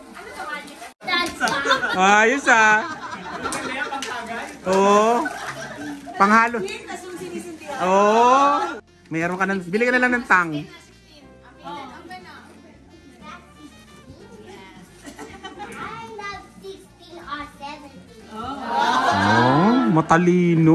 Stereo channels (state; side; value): identical; both; correlation 1.00